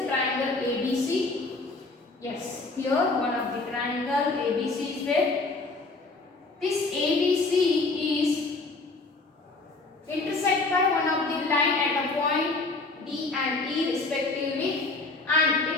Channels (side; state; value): right; quieter; 3.5 dB